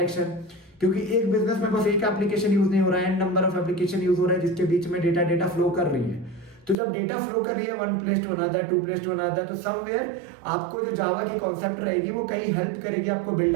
क्योंकि एक बिजनेस में बस एक एप्लीकेशन यूज नहीं हो रहा है, and number of application use हो रहा है जिसके बीच में डेटा फ्लो कर रही है। तो जब डेटा फ्लो कर रही है one place to another, to place to another, तो समवेयर आपको जो जावा की कॉन्सेप्ट रहेगी वो कहीं हेल्प करेगी आपको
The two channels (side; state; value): left; drops out; at 6.8 s